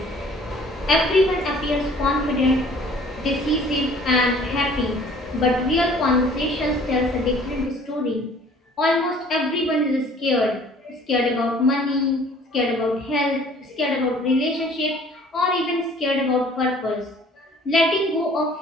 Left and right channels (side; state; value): both; normal; correlation 0.53